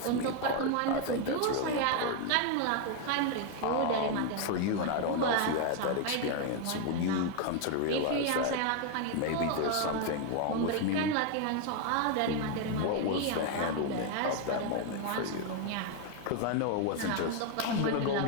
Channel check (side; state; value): both; different; correlation 0.01